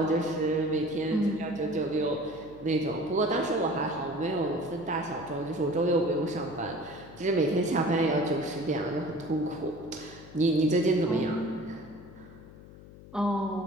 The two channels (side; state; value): left; noise; hum, 18 dB below the sound